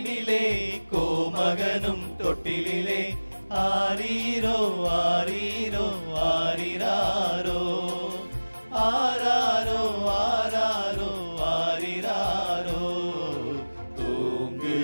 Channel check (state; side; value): inverted; both; correlation -1.00